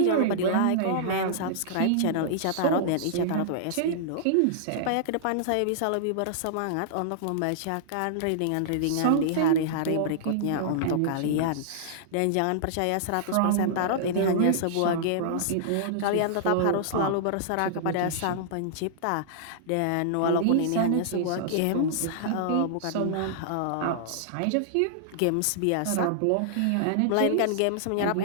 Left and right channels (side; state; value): both; different; correlation -0.01